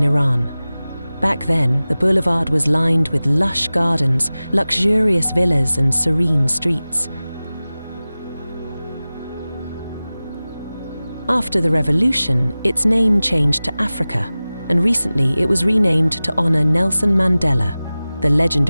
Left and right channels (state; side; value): inverted; both; correlation -0.97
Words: Iran. Back then, the boulevard was lined with lush gardens, luxurious villas, and serene streets. After the revolution, its name changed to Africa, and recently it was renamed to honor Nelson Mandela, the